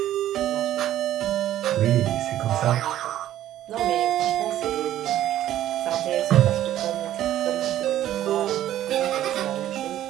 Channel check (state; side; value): quieter; left; 12.6 dB